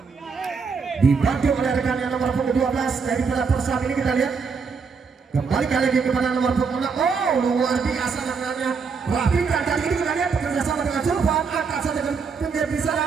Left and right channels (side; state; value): left; quieter; 5.3 dB